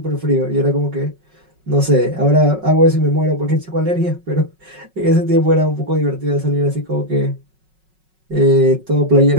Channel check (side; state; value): left; late; 5.4 ms